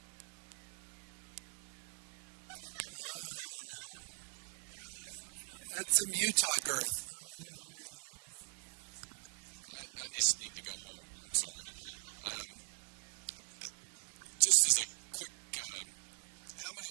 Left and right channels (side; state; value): left; silent; 50 dB below the other